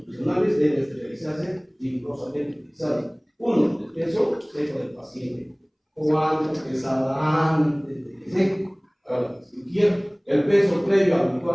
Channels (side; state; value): both; identical; correlation 1.00